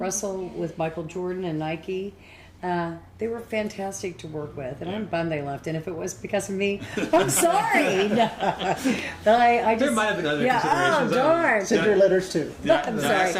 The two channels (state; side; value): identical; both; correlation 1.00